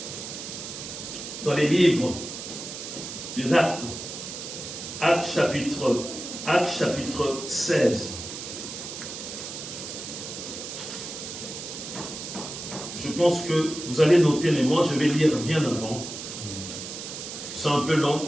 dans les livres des Actes, Actes chapitre 16. Je pense que vous allez noter, mais moi je vais lire bien avant. C'est un peu long,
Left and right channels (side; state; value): right; noise; hiss, 9 dB below the sound